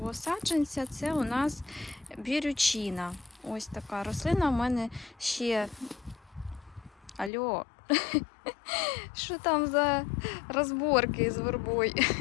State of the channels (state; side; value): drops out; right; at 7.3 s